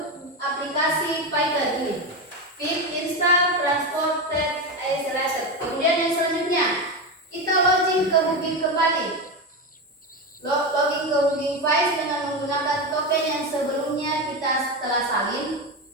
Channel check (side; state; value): both; normal; correlation 0.16